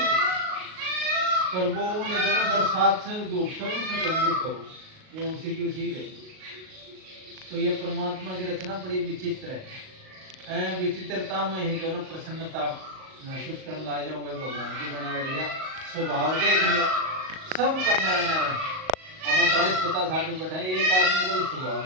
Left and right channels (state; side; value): late; left; 38 ms